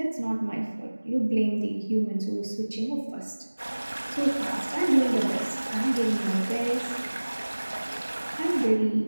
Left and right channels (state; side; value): inverted; both; correlation -1.00